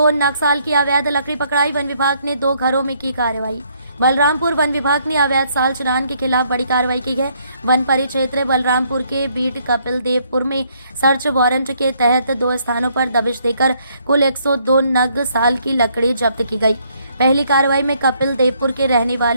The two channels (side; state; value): both; inverted; correlation -0.69